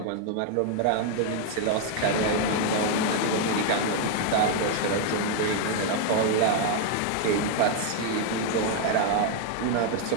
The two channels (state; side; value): different; both; correlation 0.00